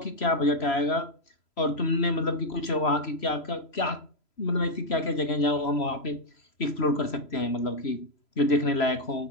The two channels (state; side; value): late; right; 3.0 ms